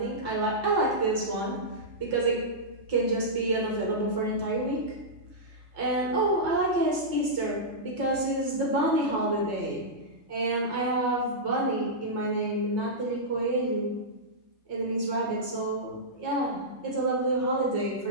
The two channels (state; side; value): late; right; 3.3 ms